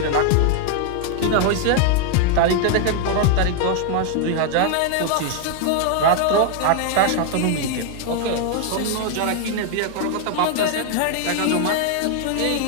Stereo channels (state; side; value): different; both; correlation 0.00